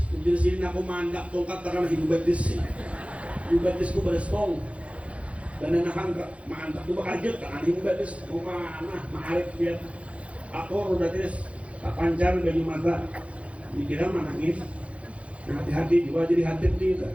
Di sini aku mandap tongkat karena hidup batis. Hidup batisku berestong. Dan nahan ke mantap tuh bakajut kan hidup batis. Aku mana ma'arif biar aku batis panjang baju mata. Dikira menangis. Hati-hati juga jadi khatib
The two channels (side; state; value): left; late; 0.063 ms